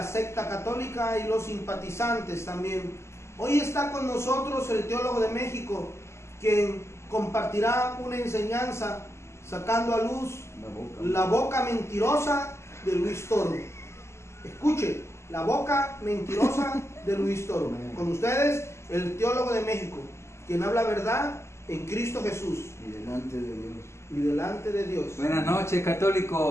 secta católica y los simpatizantes también. Hoy está con nosotros el teólogo de México, quien compartirá una enseñanza sacando a luz la boca mentirosa de Luis Toro. Escuche, la boca mentirosa de Luis Toro. Con ustedes, el teólogo de México, quien habla verdad en Cristo Jesús. Y delante de Dios. Y delante de Dios. Buenas noches,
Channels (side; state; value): right; late; 0.13 ms